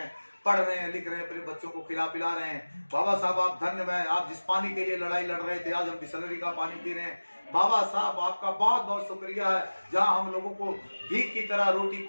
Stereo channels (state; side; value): inverted; both; correlation -1.00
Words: पढ़ रहे हैं, लिख रहे हैं, अपने बच्चों को खिला पिला रहे हैं। बाबा साहब आप धन्य हैं, आप जिस पानी के लिए लड़ाई लड़ रहे थे आज हम बिसलरी का पानी पी रहे हैं। बाबा साहब आपका बहुत बहुत शुक्रिया है। जहां हम लोगों को भीख की तरह रोटी,